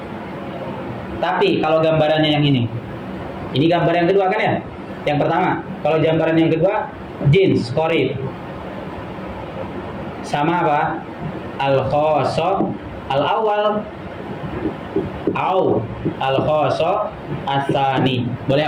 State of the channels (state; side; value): identical; both; correlation 1.00